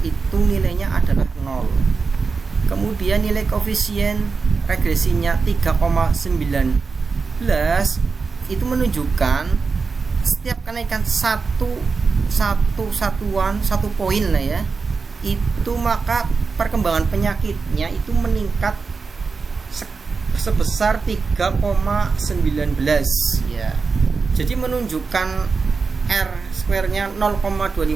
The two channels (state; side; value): quieter; left; 4.7 dB